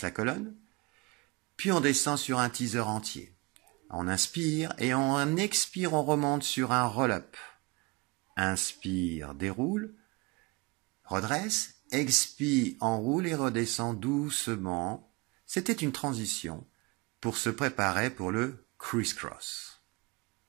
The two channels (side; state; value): left; quieter; 26.5 dB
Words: la colonne. Puis on descend sur un teaser entier. On inspire et on expire, on remonte sur un roll-up. Inspire, déroule. Redresse. Expire, enroule et redescend doucement. C'était une transition pour se préparer pour le criss-cross.